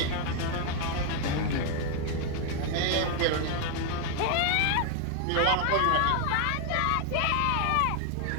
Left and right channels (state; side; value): different; both; correlation 0.00